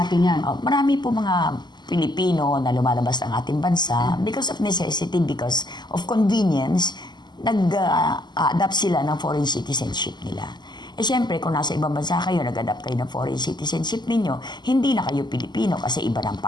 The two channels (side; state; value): right; late; 0.21 ms